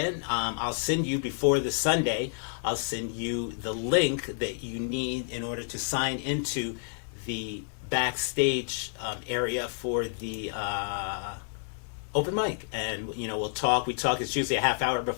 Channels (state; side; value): silent; right; digital silence